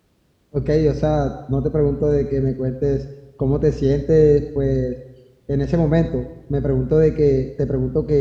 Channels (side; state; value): both; identical; correlation 1.00